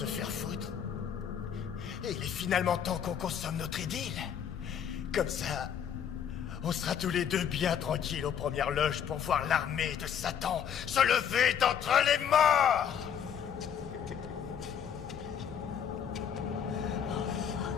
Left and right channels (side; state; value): right; quieter; 8.4 dB